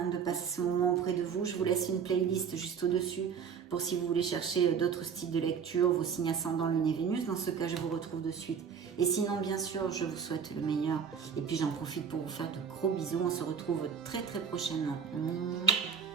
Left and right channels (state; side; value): quieter; left; 6.9 dB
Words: de passer ce moment auprès de vous. Je vous laisse une playlist juste au-dessus pour si vous voulez chercher d'autres styles de lecture, vos signes ascendants, Lune et Vénus. Dans ce cas, je vous retrouve de suite. Et sinon, bien sûr, je vous souhaite le meilleur. Et puis, j'en profite pour vous faire de gros bisous. On se retrouve très, très prochainement.